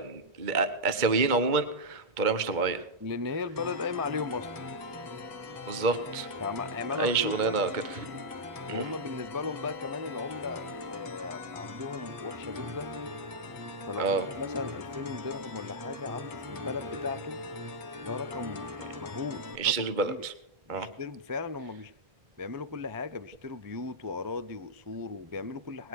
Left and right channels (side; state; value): left; late; 2.2 ms